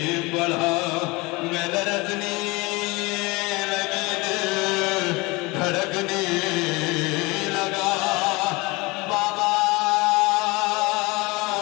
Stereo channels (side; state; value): right; quieter; 24.5 dB